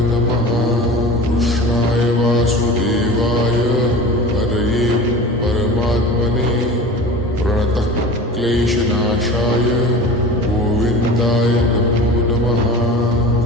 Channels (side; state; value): both; normal; correlation 0.36